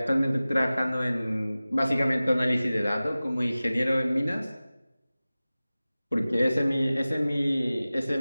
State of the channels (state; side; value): inverted; both; correlation -0.97